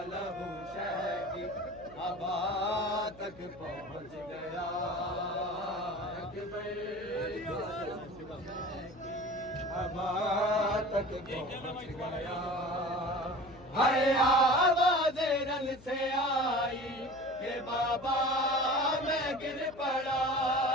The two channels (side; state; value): left; noise; hum, 21 dB below the sound